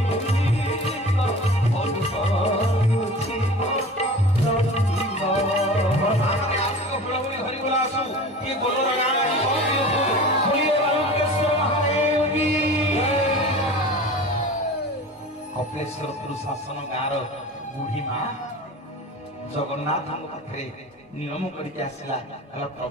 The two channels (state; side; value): normal; both; correlation 0.37